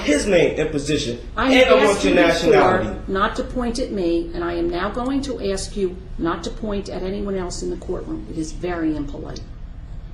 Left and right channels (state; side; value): identical; both; correlation 1.00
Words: name and position. I and have I want asked your you nationality. before not to point at me, and I am now going to ask you not to point at anyone else in the courtroom. It is very impolite.